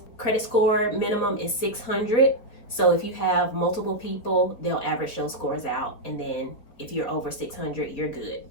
Credit score minimum is 600. So if you have multiple people, they'll average those scores out. And then if you're over 600, you're good.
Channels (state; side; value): late; right; 4.5 ms